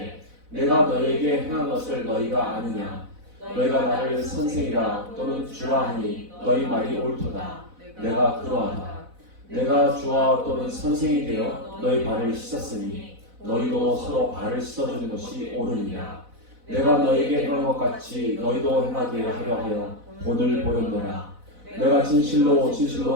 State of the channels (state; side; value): late; left; 4.0 ms